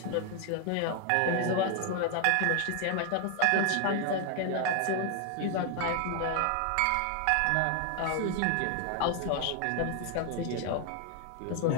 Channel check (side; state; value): both; different; correlation 0.00